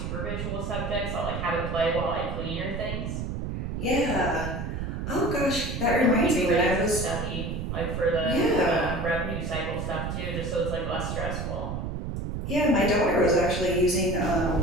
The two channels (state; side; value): noise; right; rumble, 4 dB below the sound